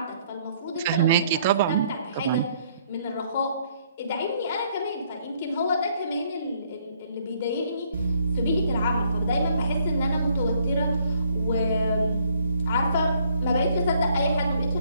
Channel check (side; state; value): both; inverted; correlation -0.65